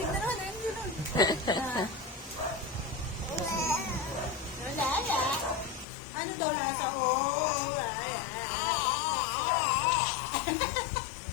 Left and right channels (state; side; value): drops out; right; at 5.9 s